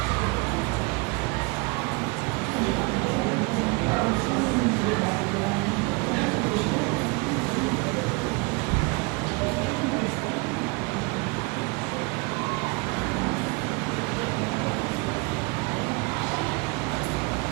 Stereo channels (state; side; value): quieter; left; 29.5 dB